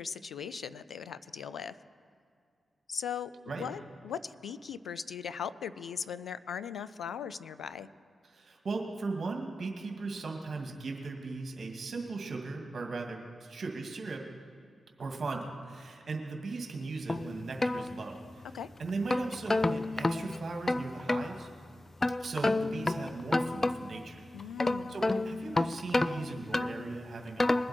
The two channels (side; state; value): both; normal; correlation 0.92